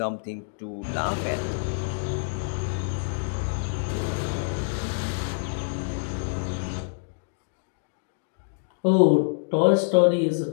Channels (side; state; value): right; silent; digital silence